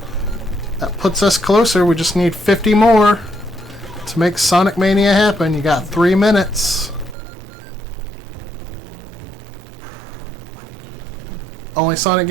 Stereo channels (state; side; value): drops out; left; at 7.2 s